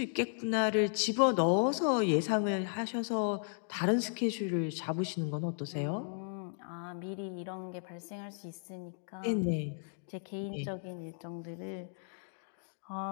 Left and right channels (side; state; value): right; silent; digital silence